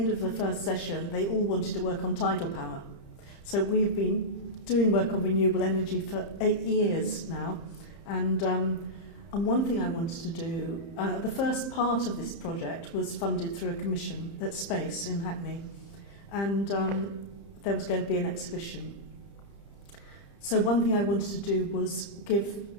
of the first session, they all wanted to work on tidal power. So we've been doing work on renewable energy for 8 years now. And one thing I wanted to do, the first part of this project was funded through a commission at Space in Hackney. And there was going to be an exhibition. So one thing I wanted to do was give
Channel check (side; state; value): right; late; 30 ms